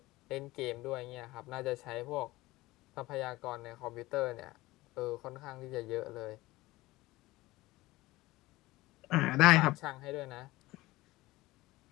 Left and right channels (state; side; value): quieter; right; 19.1 dB